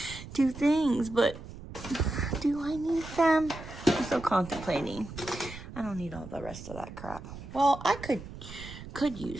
two things, but do I need them? I'm still contemplating. I don't need all the rest of that crap. Well, I could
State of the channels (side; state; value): right; noise; rumble, 13 dB below the sound